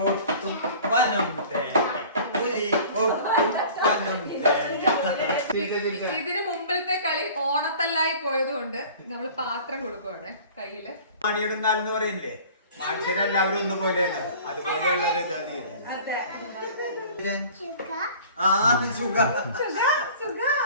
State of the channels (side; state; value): both; inverted; correlation -0.45